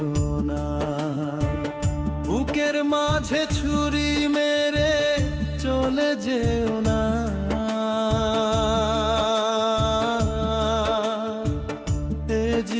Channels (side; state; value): both; identical; correlation 1.00